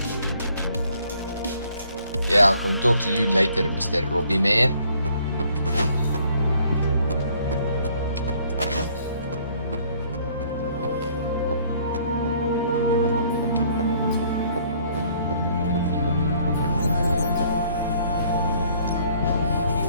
Yeah, I'll come talk to you later, Mr. Robbie man.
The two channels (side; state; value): both; inverted; correlation -0.61